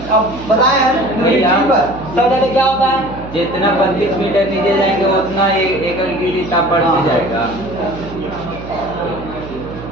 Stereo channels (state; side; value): noise; right; hum, 13 dB below the sound